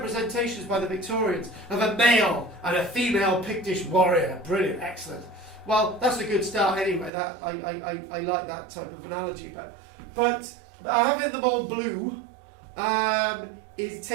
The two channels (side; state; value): left; drops out; at 7.1 s